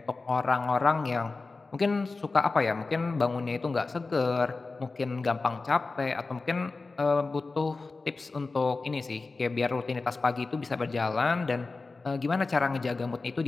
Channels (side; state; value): right; quieter; 3.8 dB